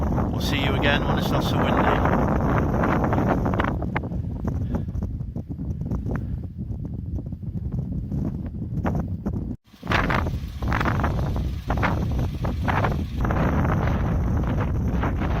We'll see you again when it's not so windy.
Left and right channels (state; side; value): identical; both; correlation 1.00